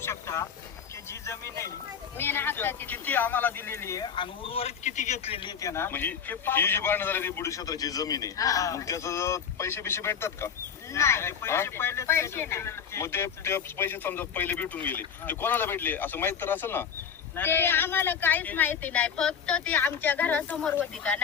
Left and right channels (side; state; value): right; quieter; 7.3 dB